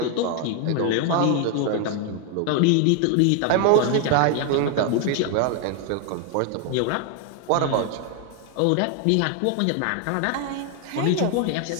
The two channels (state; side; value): different; both; correlation 0.01